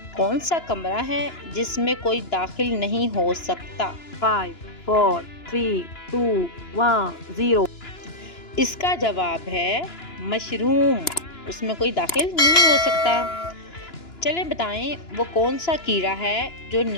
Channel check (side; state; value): right; late; 2.9 ms